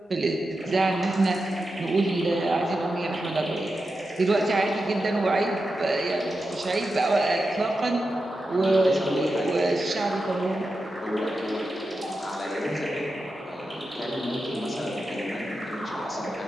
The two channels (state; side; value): normal; both; correlation 0.90